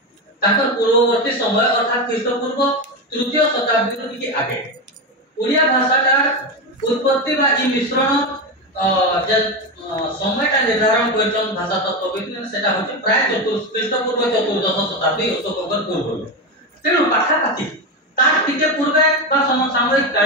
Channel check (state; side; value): normal; both; correlation 0.15